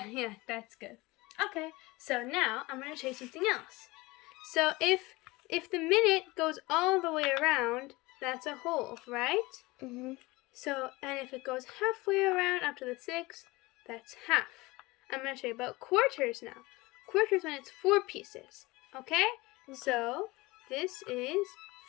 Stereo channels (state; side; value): quieter; right; 22.0 dB